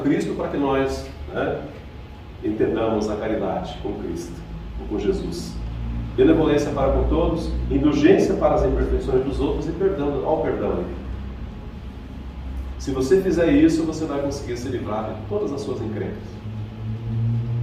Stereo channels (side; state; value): both; identical; correlation 1.00